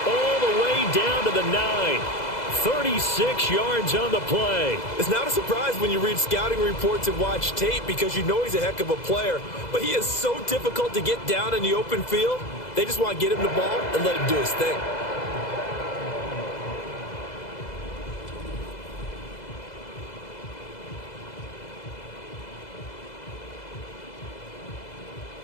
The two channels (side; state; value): right; late; 2.0 ms